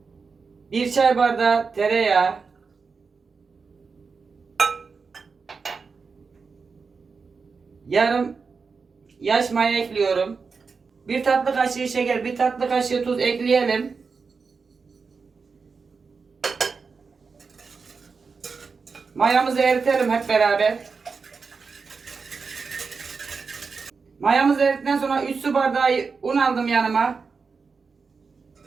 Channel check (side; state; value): left; quieter; 5.0 dB